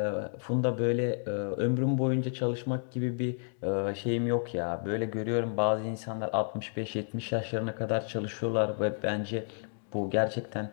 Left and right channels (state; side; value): silent; right; 57 dB below the other